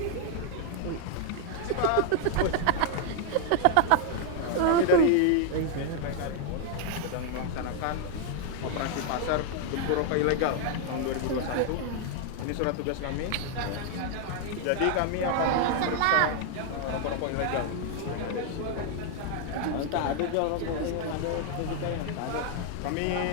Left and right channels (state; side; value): different; both; correlation 0.00